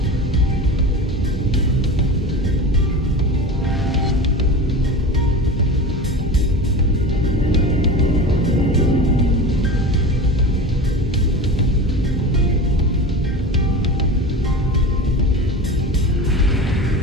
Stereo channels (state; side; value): normal; both; correlation 0.30